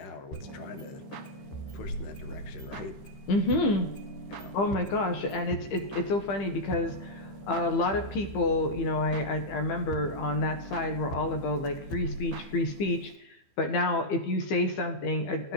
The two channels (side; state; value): right; late; 15 ms